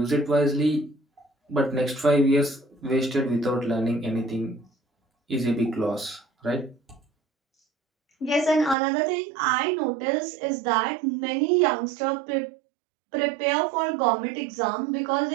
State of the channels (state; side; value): drops out; left; at 8.8 s